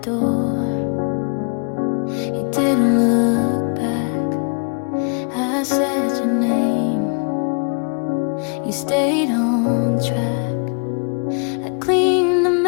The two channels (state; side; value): quieter; right; 40.0 dB